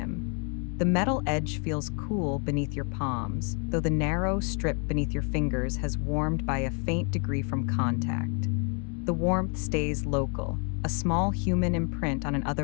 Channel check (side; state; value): right; quieter; 38.1 dB